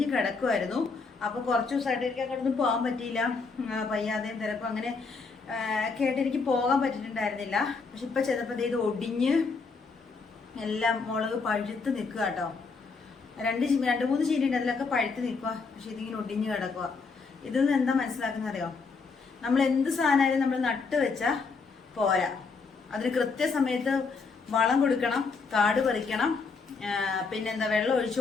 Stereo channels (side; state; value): right; quieter; 4.6 dB